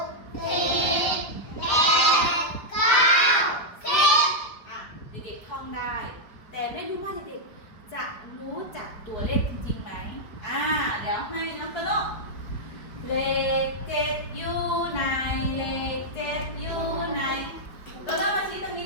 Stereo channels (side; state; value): right; late; 4.9 ms